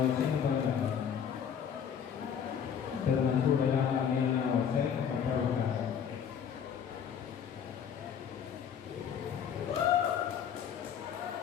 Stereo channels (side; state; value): right; quieter; 7.9 dB